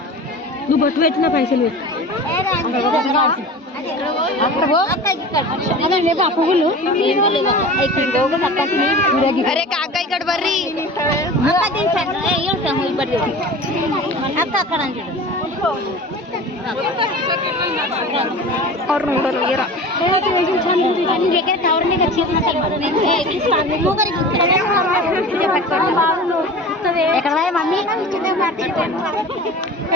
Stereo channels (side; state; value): both; normal; correlation 0.36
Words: నువ్వు బొట్టు పెట్టిన పైసలు పెట్టు పువ్వులు అరే కాక ఇక్కడ ಬರ್ರಿ అక్క అక్కడ ಅವ್ರು ನೋಡೋರು ఎక్కడ మమ్మీ